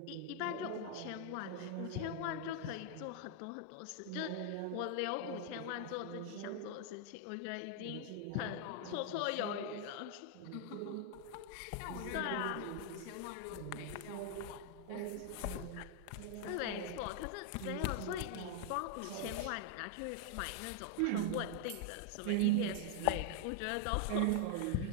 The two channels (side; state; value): both; different; correlation 0.00